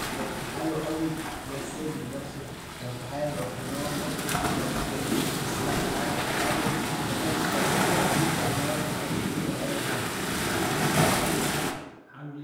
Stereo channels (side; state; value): both; identical; correlation 1.00